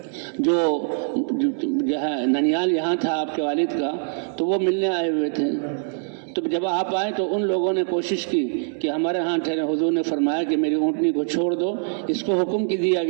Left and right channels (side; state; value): left; silent; 63 dB below the other